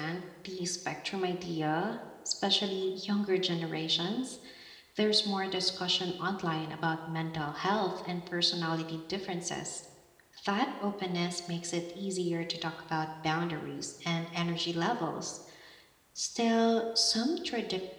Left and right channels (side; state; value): both; identical; correlation 1.00